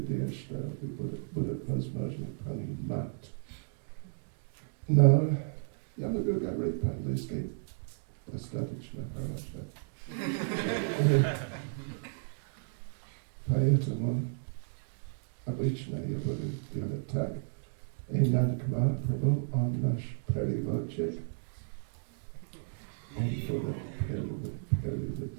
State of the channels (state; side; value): silent; left; digital silence